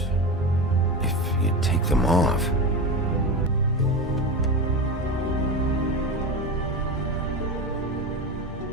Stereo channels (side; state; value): both; normal; correlation 0.22